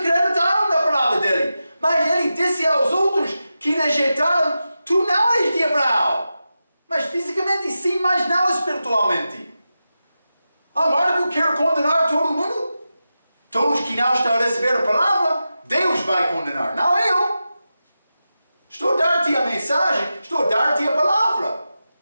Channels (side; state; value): both; inverted; correlation -0.92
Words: na palavra dele, mas ele disse aos outros que rejeitaram: tu não és de Abraão, mas fisicamente sim, mas não espiritualmente. Amargo quer condenar todo mundo? Todos que não estão a receber a palavra, Deus vai condenar, não eu. Estou a dar-te a mensagem, estou a dar-te a palavra.